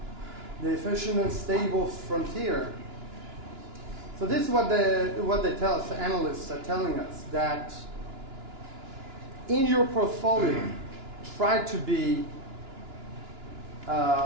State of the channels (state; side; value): late; left; 2.9 ms